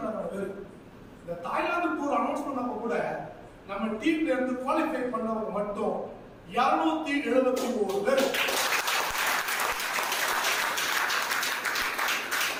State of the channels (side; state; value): both; identical; correlation 1.00